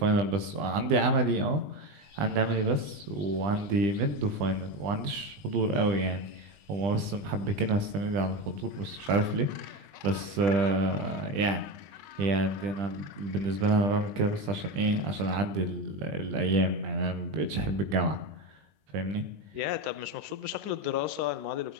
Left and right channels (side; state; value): left; late; 20 ms